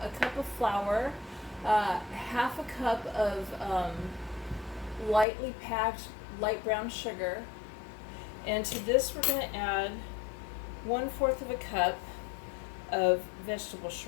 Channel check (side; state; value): right; drops out; at 5.2 s